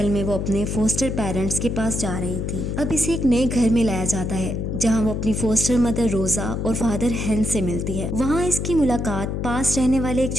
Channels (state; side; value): noise; left; hum, 2 dB below the sound